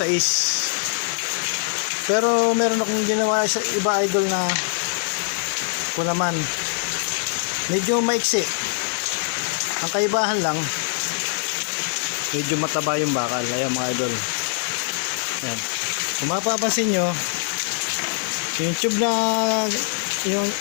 6. Pero meron akong ginawa sa iba idol na po naman medyo maiksi. Ang kaibahan lang, medyo mataba yung bakal. Ayan mga idol. Yan. Kung mapapansin nyo, yung tube na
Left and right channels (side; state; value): right; silent; 60 dB below the other